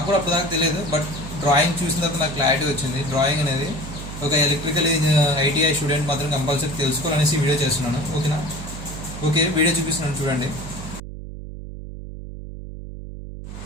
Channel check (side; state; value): right; noise; hum, 10 dB below the sound